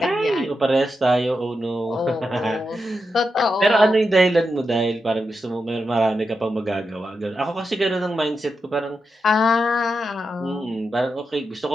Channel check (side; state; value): both; normal; correlation 0.87